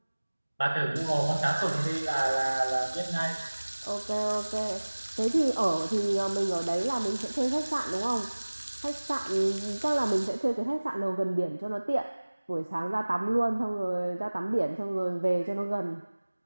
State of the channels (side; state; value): both; inverted; correlation -1.00